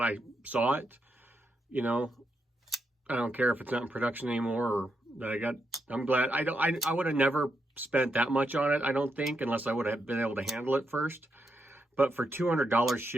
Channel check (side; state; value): both; normal; correlation 0.82